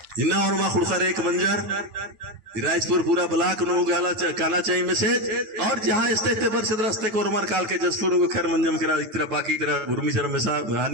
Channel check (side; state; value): left; late; 9.3 ms